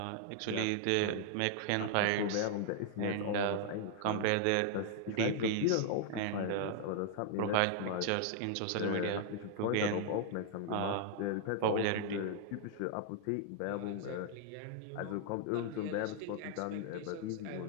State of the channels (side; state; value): both; different; correlation 0.00